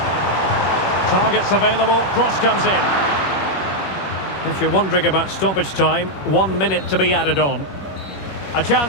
Targets available, cross comes in. If you're wondering about stoppage time, 1 minute to be added on. A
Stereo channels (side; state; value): right; late; 21 ms